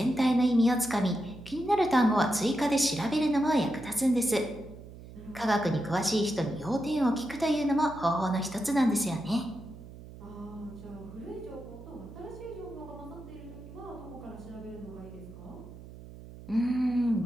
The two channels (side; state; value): right; noise; hum, 16 dB below the sound